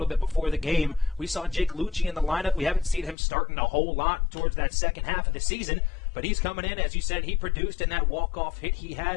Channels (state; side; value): drops out; right; at 3.2 s